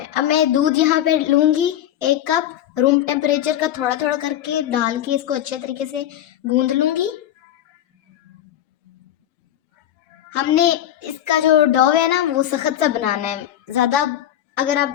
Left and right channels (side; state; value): right; quieter; 11.7 dB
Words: अब मैं दूध यहाँ पे लूंगी 1 कप, रूम टेम्परेचर का थोड़ा थोड़ा करके डाल के इसको अच्छे तरीके से गूंद लूंगी। हमने इसका जो डो है ना वो सख्त सा बनाना है। ज़्यादा अगर आप